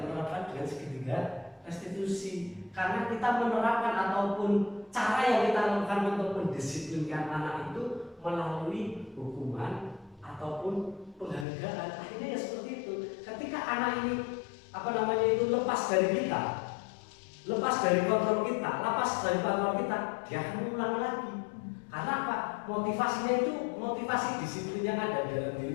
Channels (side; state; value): right; drops out; at 11.5 s